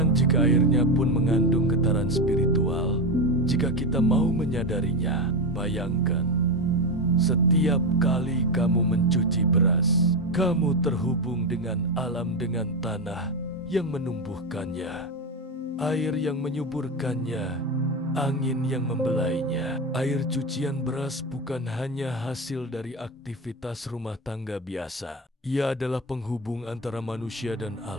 jika airnya pun mengandung getaran spiritual jika kita mau menyadarinya. Bayangkan, setiap kali kamu mencuci beras, kamu terhubung dengan alam, dengan tanah yang menumbuhkannya, air yang menyuburkannya, angin yang membelainya. Air cucian beras bukan hanya hasil dari aktivitas rumah tangga biasa. Ia adalah penghubung antara manusia dan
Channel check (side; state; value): both; normal; correlation 0.15